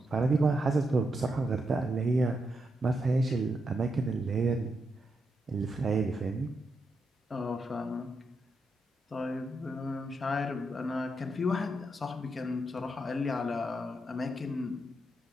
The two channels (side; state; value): both; normal; correlation 0.83